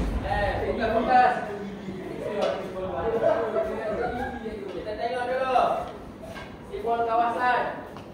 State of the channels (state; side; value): identical; both; correlation 1.00